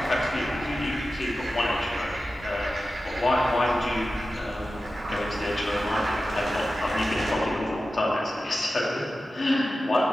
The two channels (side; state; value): both; normal; correlation 0.94